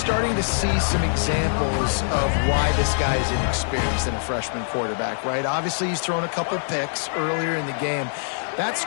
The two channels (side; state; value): right; silent; 63 dB below the other